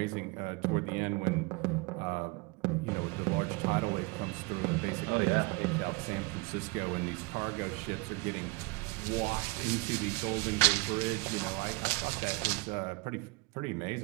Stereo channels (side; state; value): left; quieter; 26.2 dB